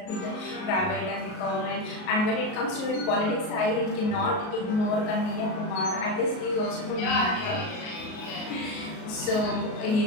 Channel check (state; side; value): late; right; 38 ms